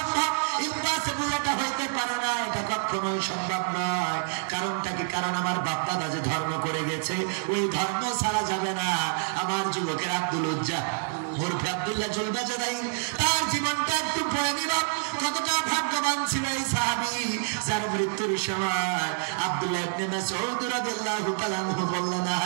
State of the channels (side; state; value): left; silent; 60 dB below the other